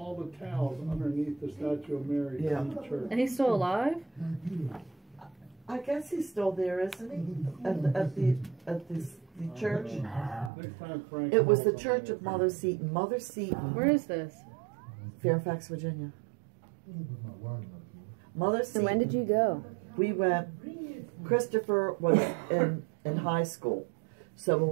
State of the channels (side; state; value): left; drops out; at 10.5 s